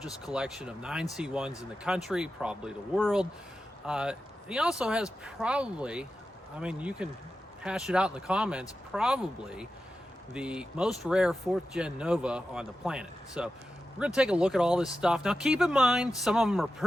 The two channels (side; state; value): both; normal; correlation 0.92